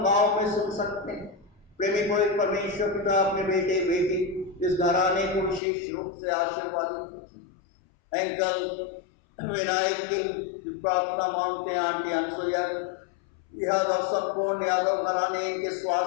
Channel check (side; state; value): right; drops out; at 5.6 s